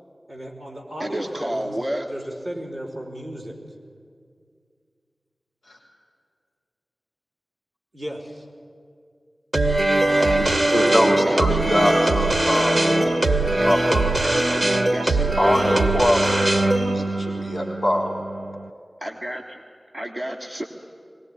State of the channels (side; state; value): both; normal; correlation 0.93